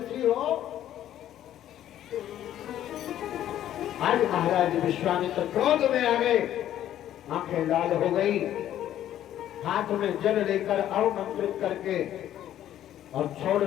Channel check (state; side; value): quieter; right; 11.8 dB